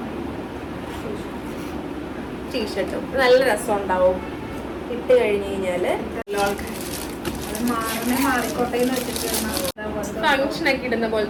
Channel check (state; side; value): identical; both; correlation 1.00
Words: ടീഷർട്ടും നല്ല രസം ഉണ്ടാവും ഇട്ട് കഴിഞ്ഞ് കഴിഞ്ഞാല്. ഫങ്ഷൻ ഒക്കെ ഇടുന്ന